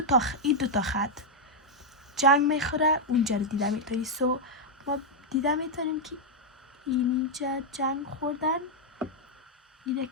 دو تا خط جنگ میخوره اونجا رو دیده میتونی. So ما دیده میتونیم که اینجا جنگ خوردن. اینه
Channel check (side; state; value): both; normal; correlation -0.02